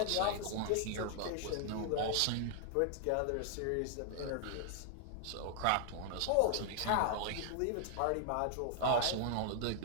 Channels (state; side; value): different; both; correlation 0.00